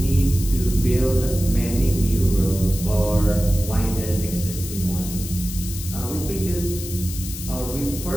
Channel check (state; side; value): noise; left; hiss, 10 dB below the sound